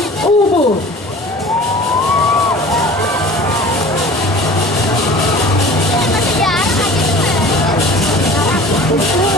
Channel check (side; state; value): both; normal; correlation 0.43